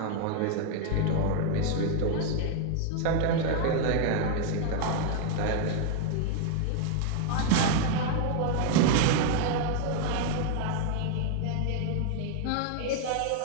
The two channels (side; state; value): both; different; correlation 0.00